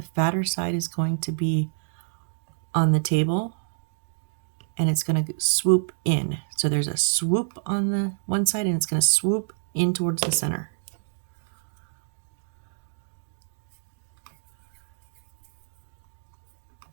fatter side is going to be on the table, and it's going to swoop in. So there's a swoop on the one side, and it's going to swoop in towards the center.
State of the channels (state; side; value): silent; left; digital silence